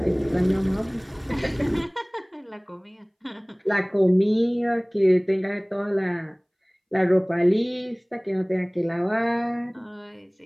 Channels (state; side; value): identical; both; correlation 1.00